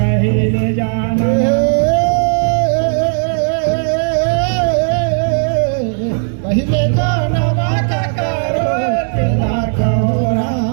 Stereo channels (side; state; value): left; silent; digital silence